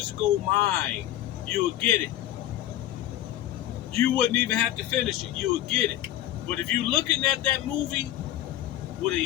mind, you'll get it. You wouldn't even have to finish it. You'll get it. But if you're looking at that movie with a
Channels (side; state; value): right; quieter; 13.2 dB